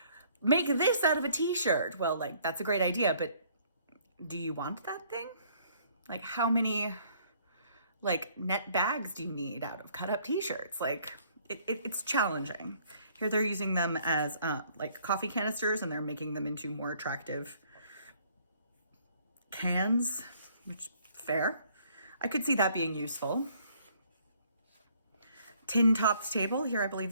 make this out of a t-shirt. Well, like that's a great idea, but do you want that thing? Like how many like net bags do you need out of cut up t-shirts? Like it's challenging. Here they're using them as like coffee canisters and they're making them into more attractive cans, which fair. I could see that being useful. Tin tops table. Here I believe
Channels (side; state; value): both; inverted; correlation -0.62